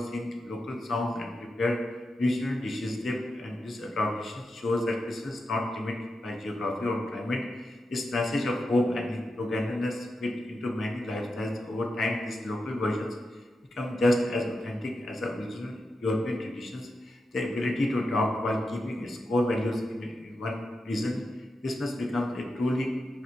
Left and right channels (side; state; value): both; normal; correlation 0.88